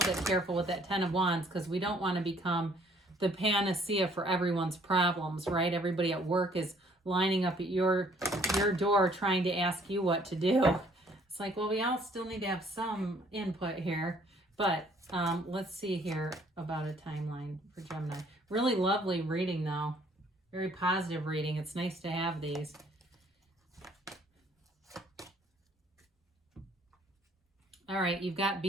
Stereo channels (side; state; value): both; normal; correlation 0.61